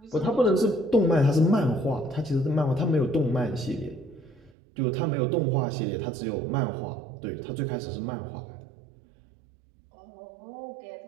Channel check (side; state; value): left; drops out; at 4.5 s